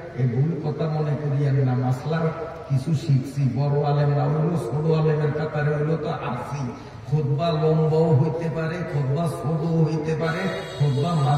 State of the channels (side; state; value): both; identical; correlation 1.00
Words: এই ভুল কথা মনে করিয়েন না। মাসলার কিছু শিখছি, বড় আলেম না হইলো, ছোট আলেমের কাতারে হইলো তো আসি। খুতবা লম্বাও হইতে পারে, খুতবা ছোটও হইতে পারে, খুতবা